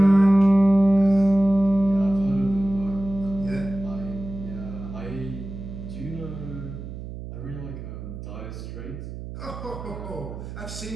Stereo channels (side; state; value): right; noise; hum, 10 dB below the sound